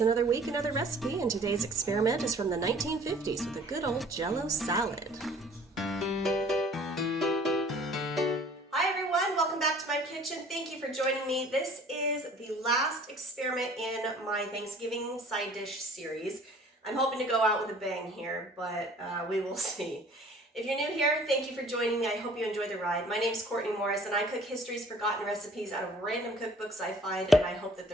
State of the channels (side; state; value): both; normal; correlation 0.52